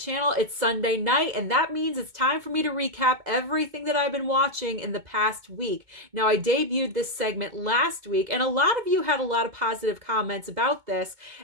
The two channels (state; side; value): late; left; 2.2 ms